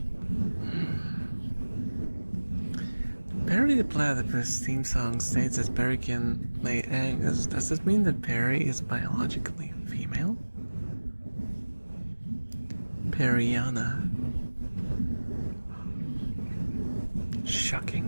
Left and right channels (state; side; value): inverted; both; correlation -1.00